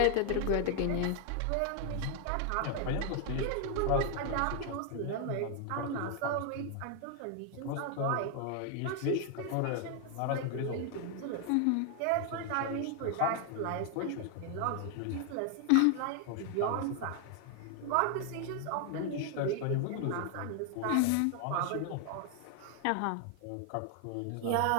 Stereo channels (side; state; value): both; different; correlation 0.00